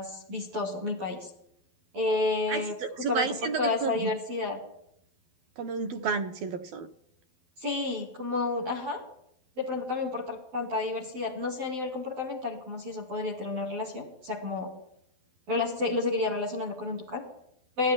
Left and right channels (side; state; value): left; late; 12 ms